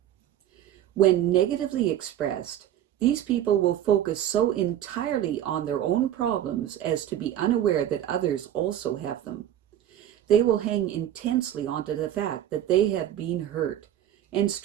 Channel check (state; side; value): quieter; left; 11.3 dB